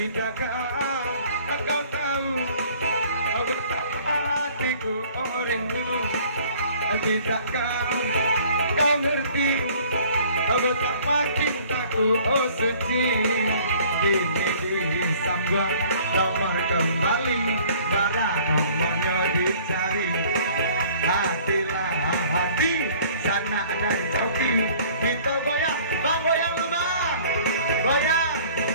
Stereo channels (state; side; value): inverted; both; correlation -0.53